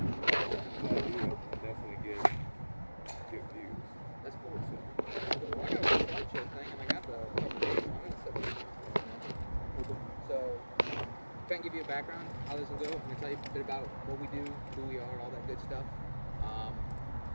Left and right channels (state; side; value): inverted; both; correlation -1.00